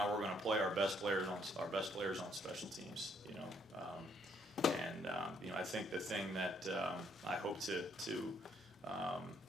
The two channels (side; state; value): both; normal; correlation 0.69